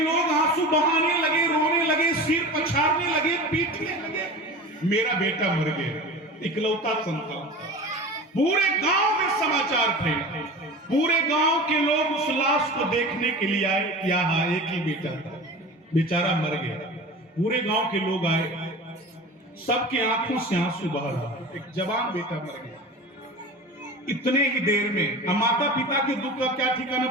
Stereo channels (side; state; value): both; normal; correlation 0.34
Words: आंसू बहाने लगे, रोने लगे, सिर पछाड़ने लगे, पीटने लगे। मेरा बेटा मर गया, इकलौता संतान था। पूरे गांव में समाचार फैला, पूरे गांव के लोग उस लाश को देखने के लिए आए। क्या हाँ, एक ही बेटा था, बेचारा मर गया। पूरे गांव के लोग आए, सबके आंखों से आंसू बह रहा। एक जवान बेटा मर गया इतने ही देर में। माता पिता के दुख का क्या